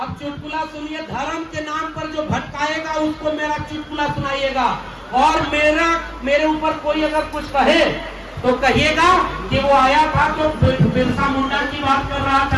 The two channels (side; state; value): both; identical; correlation 1.00